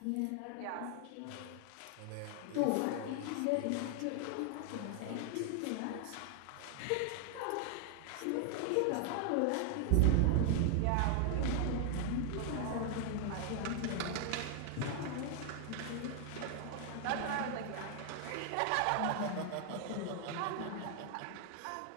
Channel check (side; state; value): both; different; correlation 0.00